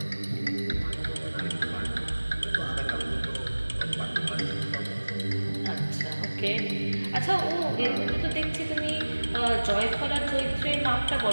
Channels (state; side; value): inverted; both; correlation -1.00